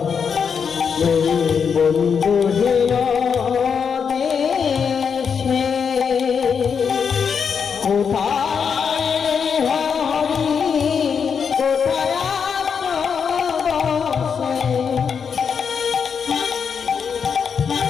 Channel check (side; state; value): right; quieter; 6.5 dB